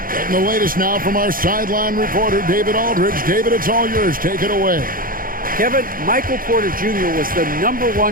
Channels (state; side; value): late; left; 0.41 ms